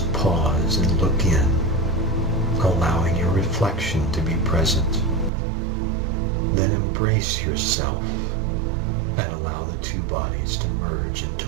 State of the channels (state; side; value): drops out; left; at 5.3 s